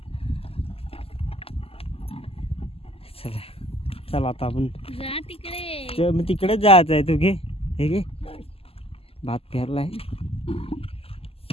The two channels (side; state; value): right; late; 0.28 ms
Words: चला आता आपण तिकडेच जायचं आहे. तू घे हे घे. भात पेरलाय.